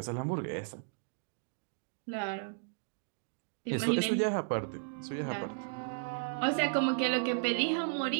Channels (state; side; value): silent; left; digital silence